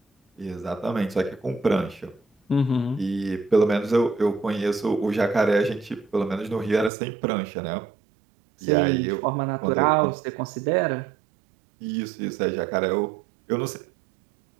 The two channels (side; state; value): left; drops out; at 6.9 s